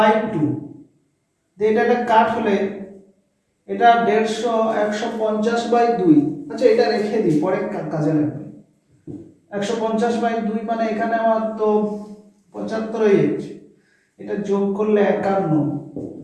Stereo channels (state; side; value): identical; both; correlation 1.00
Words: এটা কাট হলে এটা 150 150/2। আচ্ছা, এটা রেখে দিই, পরে কাজে লাগবে। 150/2 মানে এখানে আমার তো 75 হয়ে যাচ্ছে, এটা যোগ করলে 51,